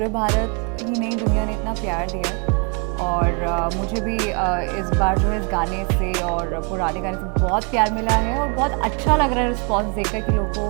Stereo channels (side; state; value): left; quieter; 35.5 dB